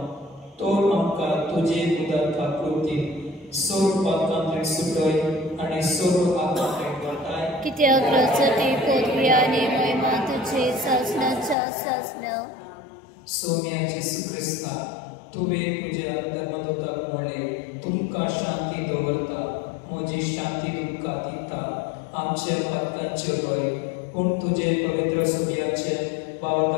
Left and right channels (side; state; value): right; drops out; at 11.6 s